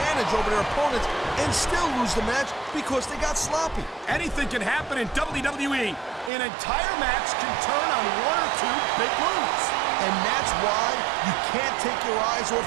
over their opponents and still lose the match because they got sloppy. Anything can happen in WWE. An entire match can turn on one or two big moves. And that's why you can't take your eyes off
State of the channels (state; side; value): drops out; left; at 6.3 s